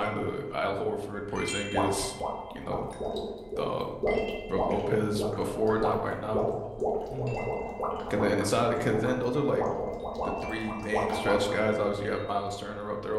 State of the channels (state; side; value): identical; both; correlation 1.00